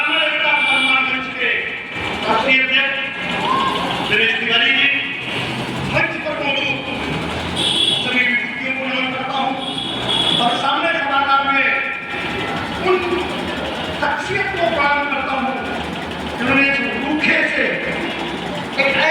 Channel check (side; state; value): both; identical; correlation 1.00